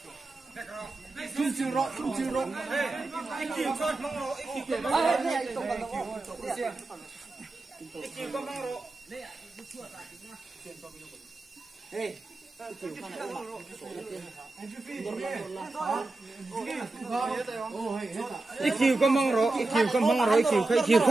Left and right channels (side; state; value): left; quieter; 3.2 dB